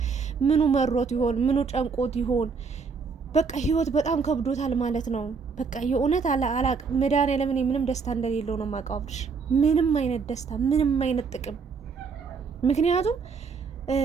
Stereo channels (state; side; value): quieter; left; 5.3 dB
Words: ምኑ መሮት ይሆን? ምኑ ጨንቆት ይሆን? በቃ ህይወት በጣም ከብዶታል ማለት ነው። በቃ የእውነት አላቅ መድኃኒዓለም ምንም ደስታ እንደሌለው ነው የማውቀው አብርሽ። ምንም አይነት ደስታ፣ ምንም አይነት ጥቅም። ምክንያቱም